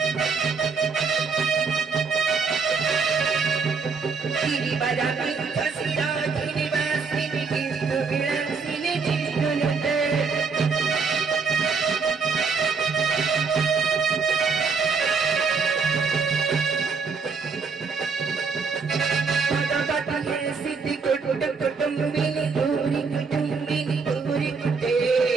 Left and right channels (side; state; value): left; quieter; 5.0 dB